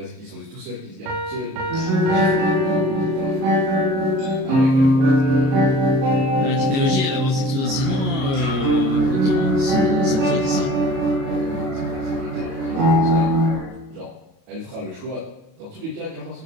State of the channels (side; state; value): left; late; 38 ms